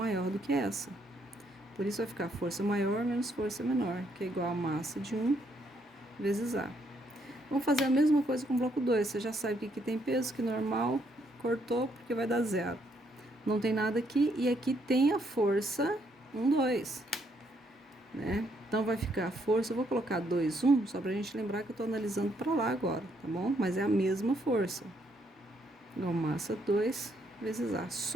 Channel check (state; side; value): normal; both; correlation 0.72